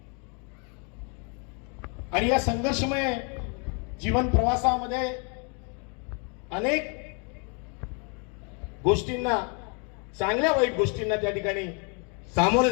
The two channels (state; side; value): quieter; right; 36.1 dB